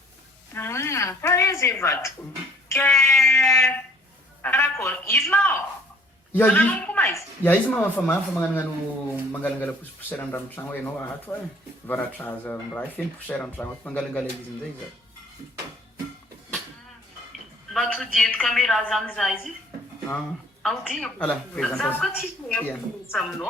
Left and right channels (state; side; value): normal; both; correlation 0.57